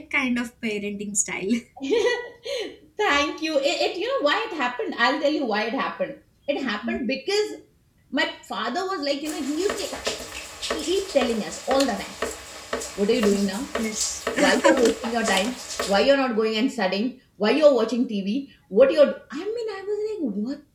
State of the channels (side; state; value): both; identical; correlation 1.00